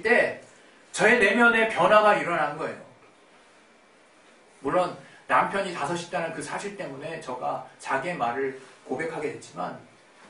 때 저의 내면에 변화가 일어난 거예요. 물론 남편이 5이 있다는 그 사실 때문에 저가 자기의 말을 고백하게 됐지만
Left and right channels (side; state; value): both; identical; correlation 1.00